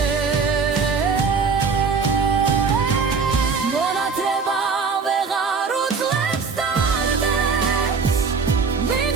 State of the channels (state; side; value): quieter; left; 5.1 dB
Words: მონათრება ვეღარ უძლებს დარდებს